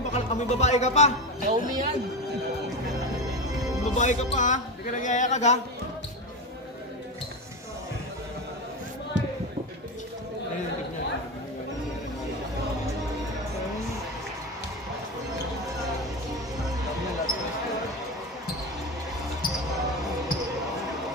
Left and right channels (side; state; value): both; normal; correlation 0.20